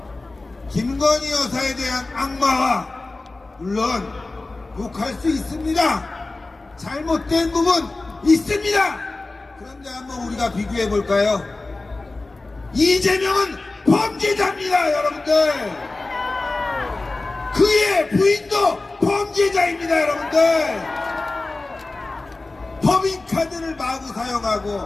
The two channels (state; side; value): quieter; right; 3.2 dB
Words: 김건희 여사에 대한 악마와, 물론 욕할 수 있습니다. 잘못된 부분 있습니다. 그런데 한번 우리가 비교해 볼까요? 이재명은 범죄자입니다, 여러분들. 그의 부인도 범죄자입니다, 여러분들. 법인카드를 마구